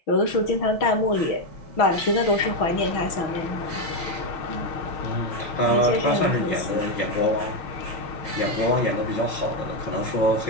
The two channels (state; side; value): late; right; 6.2 ms